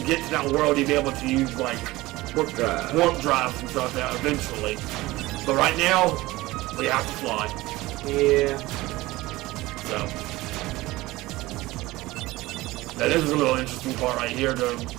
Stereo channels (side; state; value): left; quieter; 19.2 dB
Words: get to that world, you'll be able to use like warp drives and stuff like that eventually. But right now, we have to fly. Yeah. So that is a little interesting part right here.